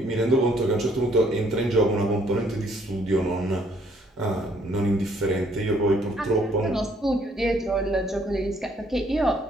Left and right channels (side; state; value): both; normal; correlation 0.65